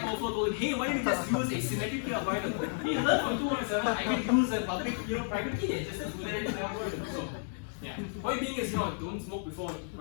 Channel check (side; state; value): right; silent; digital silence